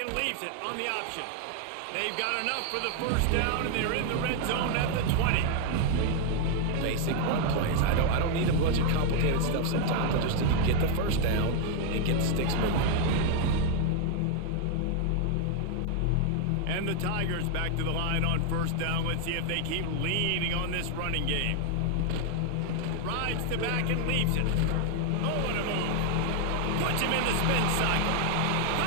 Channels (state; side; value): different; both; correlation 0.00